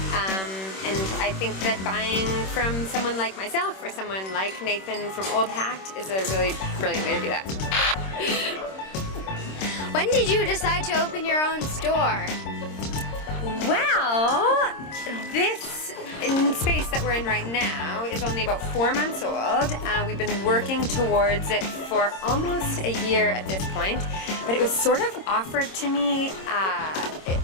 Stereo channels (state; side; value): late; right; 26 ms